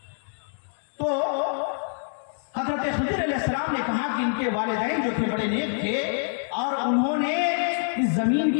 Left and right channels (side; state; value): right; silent; digital silence